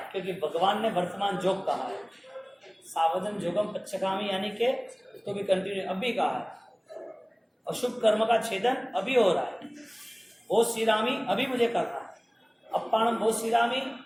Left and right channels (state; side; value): identical; both; correlation 1.00